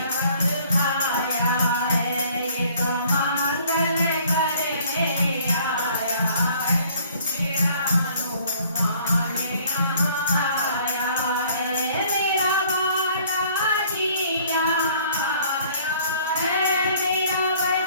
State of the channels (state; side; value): inverted; both; correlation -0.57